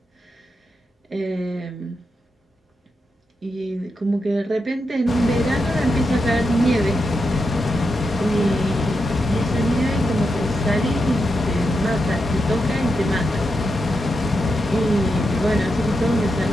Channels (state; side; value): normal; both; correlation 0.86